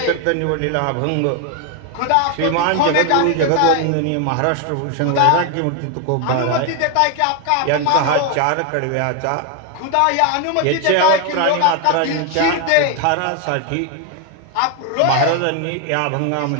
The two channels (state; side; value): different; both; correlation 0.01